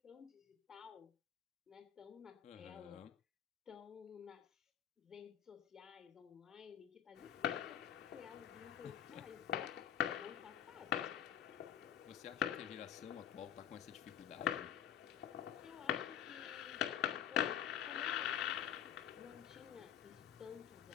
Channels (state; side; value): quieter; right; 9.7 dB